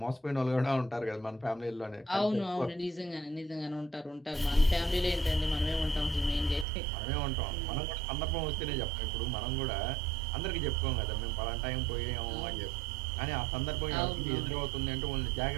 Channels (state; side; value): drops out; left; at 6.7 s